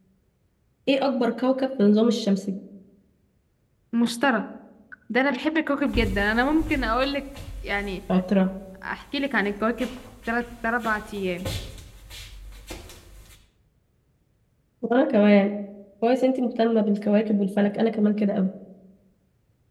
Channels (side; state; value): both; identical; correlation 1.00